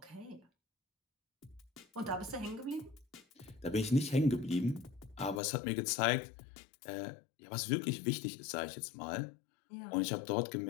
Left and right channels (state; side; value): drops out; right; at 5.4 s